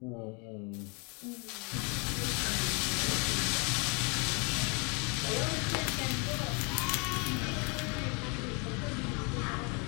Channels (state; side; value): quieter; right; 32.7 dB